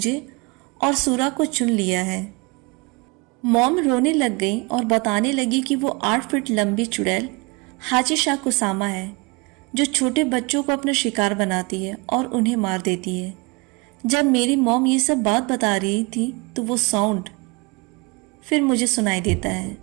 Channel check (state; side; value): quieter; left; 28.0 dB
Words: और सूरा को चुन लिया है। मॉम रोने लग गई और बताने लगी कि वो 8 फीट लंबी चुड़ैल हाचिशा कुसामा है जो छोटे बच्चों को अपना शिकार बनाती है और उन्हें मार देती है। जब मेरी मॉम ये सब बात बता रही थी तो वो साउंड फिर मुझे सुनाई देता है,